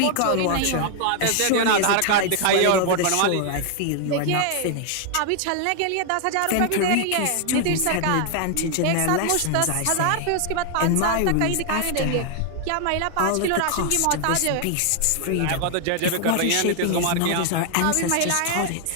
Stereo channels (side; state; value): both; different; correlation 0.00